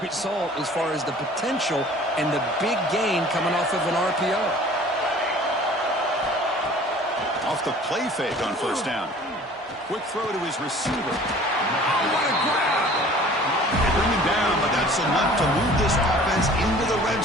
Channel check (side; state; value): both; normal; correlation 0.48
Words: as far as the potential and the big gain coming off of an RPO. Off the play fake on 1st down. Quick throw to his receiver. Oh, what a grab! They bring him down, but that's enough to move this offense into the red